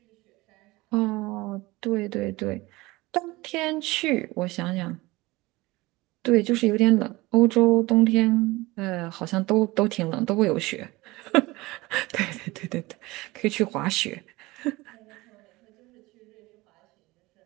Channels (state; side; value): quieter; left; 21.1 dB